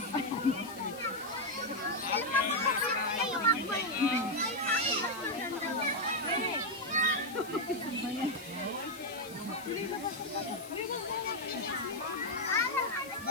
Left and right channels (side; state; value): left; noise; hiss, 17 dB below the sound